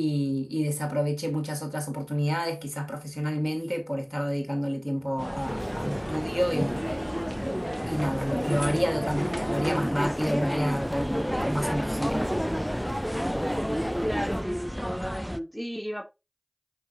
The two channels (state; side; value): identical; both; correlation 1.00